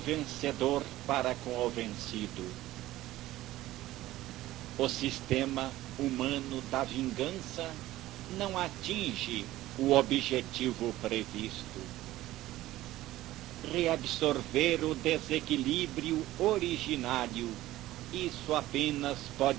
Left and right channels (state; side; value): quieter; left; 15.8 dB